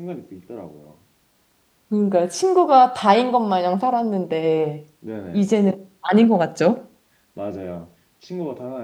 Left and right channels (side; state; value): both; identical; correlation 1.00